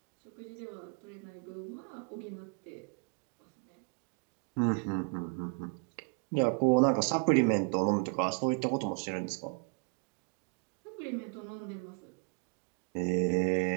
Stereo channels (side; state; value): left; quieter; 37.1 dB